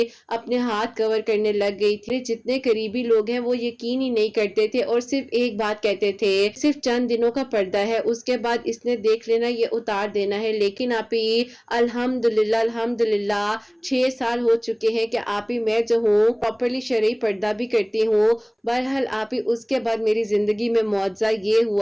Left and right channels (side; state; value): both; identical; correlation 1.00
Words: اپنے ہاتھ کور کرنے لگ گئی تھی۔ جتنے قریبی لوگ ہیں وہ یقین ہی نہیں کرتے تھے اور صرف ایک بات کہتے تھے، صرف چند دنوں کا پردہ ہے، اس کے بعد اس نے دیکھ لینا، یہ اتار دینا ہے۔ لیکن آپ ہی الحمدللہ 6 سال ہو چکے ہیں کہ آپ ہی میں جو ہوں پراپرلی شرعی پردہ بھی کرتی ہوں۔ بہرحال آپ ہی اس کے بعد میری زندگی میں معجزہ یہ